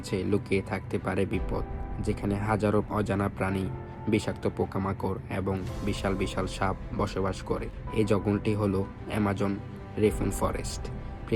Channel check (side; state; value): both; identical; correlation 1.00